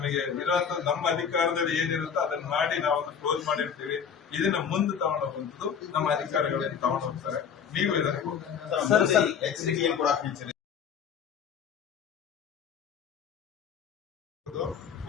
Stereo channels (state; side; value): quieter; right; 7.3 dB